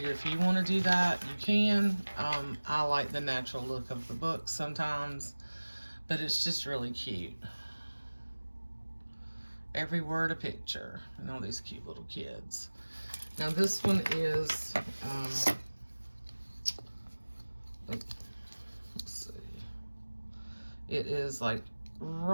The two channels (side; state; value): both; inverted; correlation -1.00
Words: if you want to do that, you can. I like the natural look of the book sometimes, but it's just really cute. Every word a picture, and all these cute little kids. Now this one is, let's see, it is like